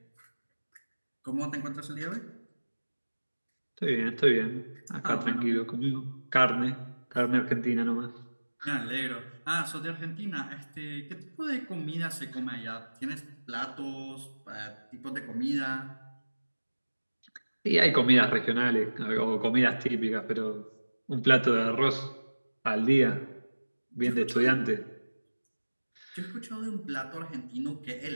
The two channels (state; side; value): inverted; both; correlation -1.00